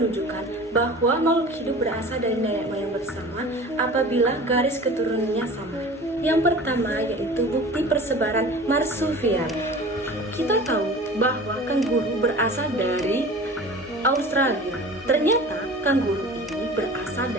bahwa makhluk hidup berasal dari nenek moyang bersama apabila garis keturunannya sama. Yang pertama yaitu bukti persebaran marsupial. Kita tahu bahwa kanguru berasal dari Australia. Ternyata kanguru ini berasal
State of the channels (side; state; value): both; normal; correlation 0.39